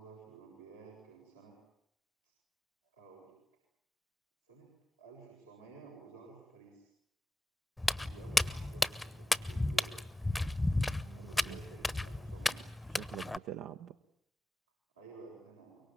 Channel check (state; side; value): normal; both; correlation 0.96